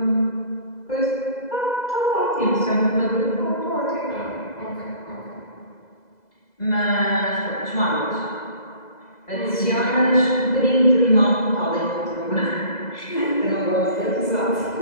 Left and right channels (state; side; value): late; right; 2.0 ms